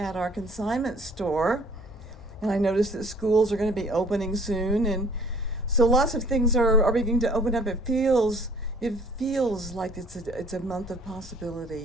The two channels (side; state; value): both; normal; correlation 0.55